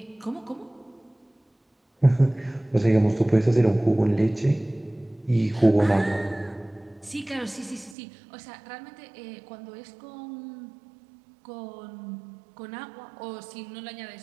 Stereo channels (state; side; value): drops out; left; at 8.0 s